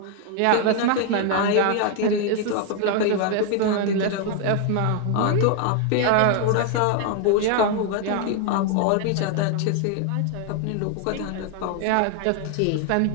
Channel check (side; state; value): both; different; correlation 0.00